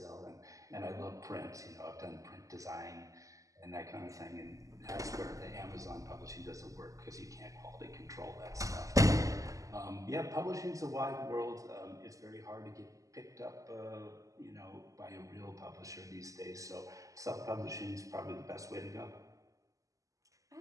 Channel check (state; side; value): late; left; 0.16 ms